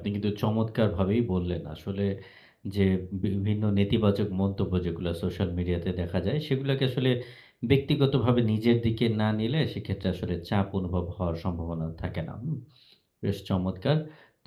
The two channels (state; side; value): identical; both; correlation 1.00